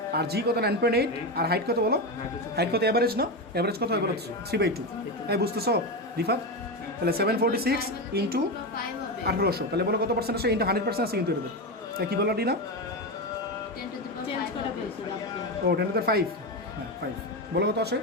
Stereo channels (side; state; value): both; normal; correlation 0.15